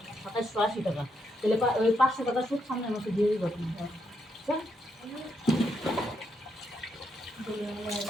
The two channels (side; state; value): both; normal; correlation 0.79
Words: 2780 টাকা। তাহলে ওই 500 টাকা সুদ সামনের মাসে দিয়ে দিবা তুমি।